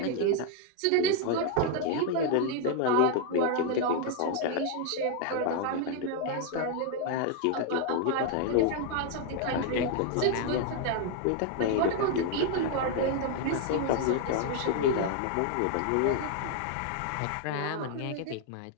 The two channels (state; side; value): different; both; correlation 0.00